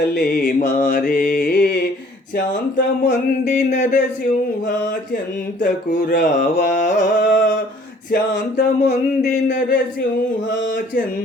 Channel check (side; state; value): both; normal; correlation 0.56